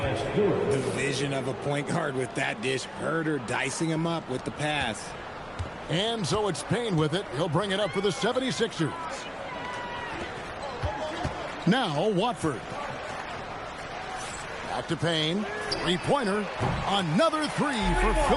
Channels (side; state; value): both; identical; correlation 1.00